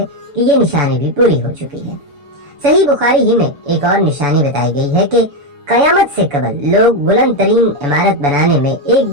कि ये निशानी भी पूरी हो चुकी है। सही बुखारी ही में एक और निशानी बताई गई है कि कयामत से कबल लोग बुलंद तरीन इमारत बनाने में एक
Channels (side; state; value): left; late; 7.0 ms